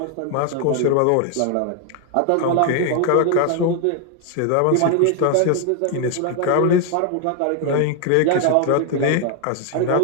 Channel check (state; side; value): different; both; correlation 0.01